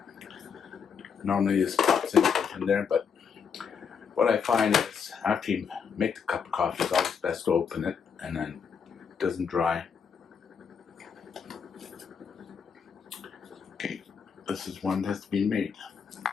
Normally this pops in there, but what I find is after you make the cup of coffee, it's always best to open it and then it doesn't dry. Okay, this is one that's been made.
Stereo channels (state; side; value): quieter; right; 6.6 dB